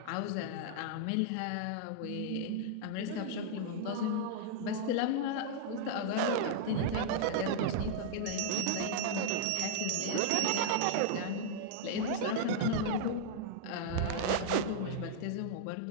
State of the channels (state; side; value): different; both; correlation -0.01